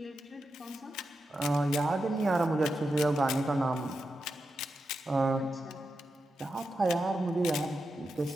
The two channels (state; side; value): normal; both; correlation 0.88